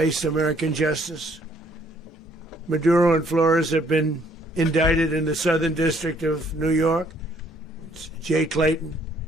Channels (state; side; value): normal; both; correlation 0.64